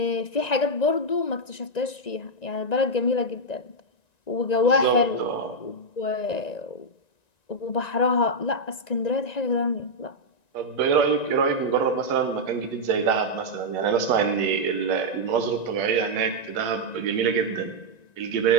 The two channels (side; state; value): right; late; 1.9 ms